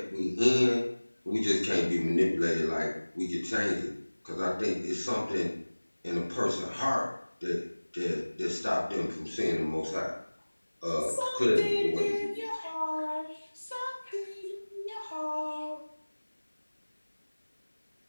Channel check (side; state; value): both; inverted; correlation -1.00